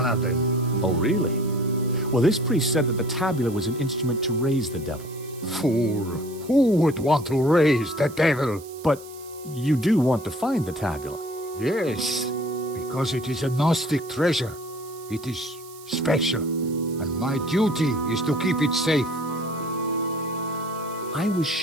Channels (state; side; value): noise; right; hiss, 19 dB below the sound